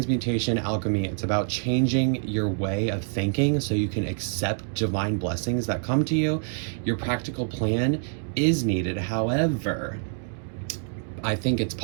alchemy. It's about changing your way of thinking so you can accept divine blessings that come to you. Your practical plan is needed. However, I think it's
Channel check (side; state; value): left; silent; 61 dB below the other